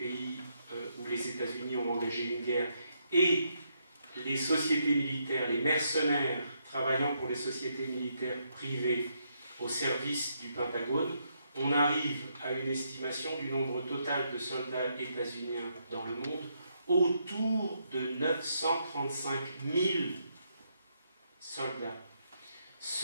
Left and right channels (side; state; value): both; inverted; correlation -0.77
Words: où les États-Unis ont engagé une guerre et les sociétés militaires, les mercenaires travaillant pour les sociétés militaires privées au service du Pentagone, on arrive à une estimation du nombre total de soldats états-uniens dans le monde autour de 935 000 soldats,